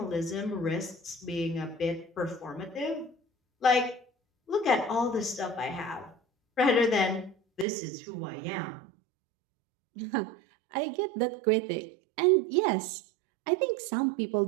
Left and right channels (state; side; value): drops out; left; at 7.7 s